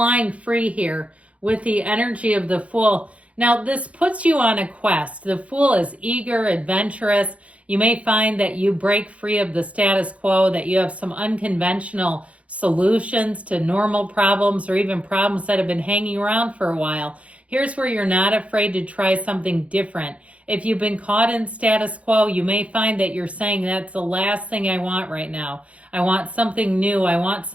free here with the energy of the Fool. Now, this puts you on a quest. The Fool is eager, adventurous. You may find that you break free of the status quo, that you have some unconventional solutions to normal problems or even problems that have been hanging around for a while. Here's where you're not afraid to try something different. If you've been caught in status quo, you may find that you're saying that's the last thing I want right now. I want something new. I want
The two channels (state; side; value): late; left; 0.064 ms